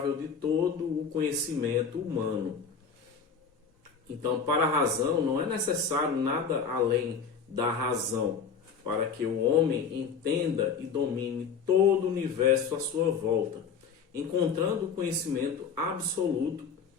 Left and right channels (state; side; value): quieter; right; 6.0 dB